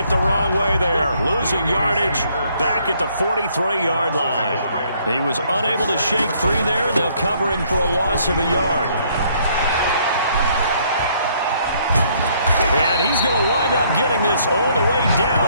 the wrong way there. Losing yardage back at the 43-yard line. He was unable to shake free there, and they'll cover him for a loss of a yard. And he's going to wind up getting this all the way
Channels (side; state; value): both; inverted; correlation -0.66